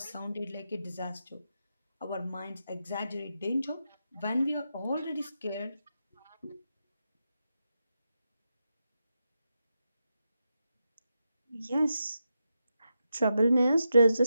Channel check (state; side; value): inverted; both; correlation -0.87